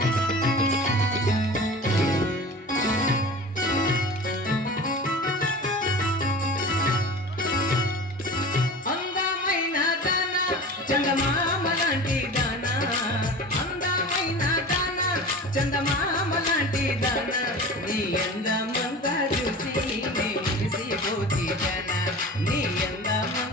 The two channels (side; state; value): both; normal; correlation 0.36